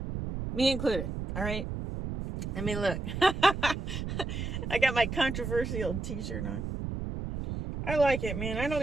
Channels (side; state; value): right; noise; rumble, 5 dB below the sound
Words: All right. I mean, look, I got my controversial t-shirt on. I like it, man.